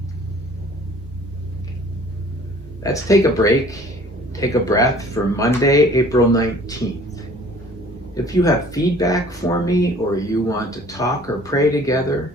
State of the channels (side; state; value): both; normal; correlation 0.51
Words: Let's take a break. Take a breath for Monday, April 19th. If you have feedback for me or you want to talk or pray together,